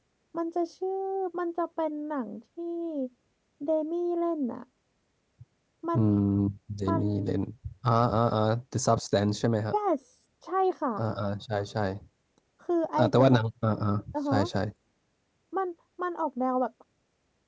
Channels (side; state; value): both; identical; correlation 1.00